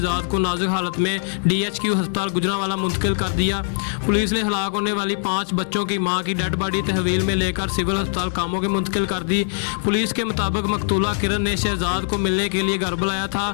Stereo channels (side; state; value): right; silent; digital silence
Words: को नाजुक हालत में DHQ अस्पताल गुजरांवाला मुंतकिल कर दिया। पुलिस ने हलाक होने वाली 5 बच्चों की मां की डेड बॉडी तहवील में लेकर सिविल अस्पताल कामों के मुंतकिल कर दी। पुलिस के मुताबिक मकतूला किरण ने शहजाद को मिलने के लिए घर बुलाया था।